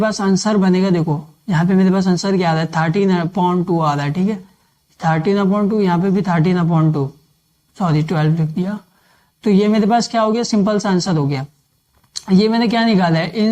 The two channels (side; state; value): both; identical; correlation 1.00